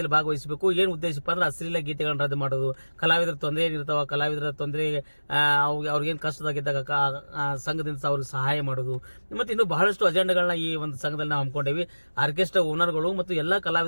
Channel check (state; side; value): inverted; both; correlation -1.00